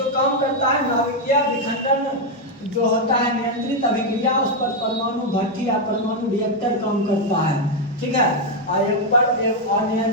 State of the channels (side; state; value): both; normal; correlation 0.02